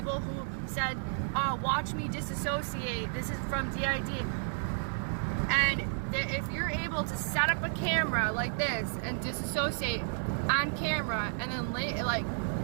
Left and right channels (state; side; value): silent; left; digital silence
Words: who said, watch me disassociate, this is from DID. And if you're able to set up a camera like this and disassociate on camera, and then like,